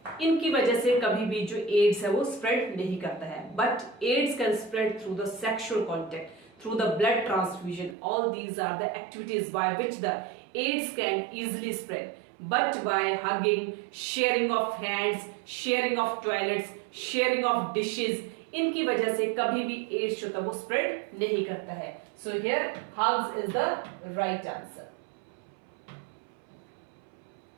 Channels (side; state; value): left; drops out; at 8.0 s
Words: इनकी वजह से कभी भी जो एड्स है वो स्प्रेड नहीं करता है। But AIDS can spread through the sexual contact, through the blood transfusion. All these are the activities by which the AIDS can easily spread. But by hugging, sharing of hands, sharing of toilets, sharing of dishes, इनकी वजह से कभी भी ads जो था वो spread नहीं करता है। So here hugs is the right answer.